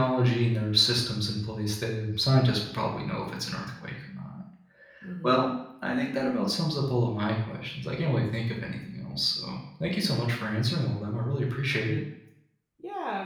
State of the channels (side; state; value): both; identical; correlation 1.00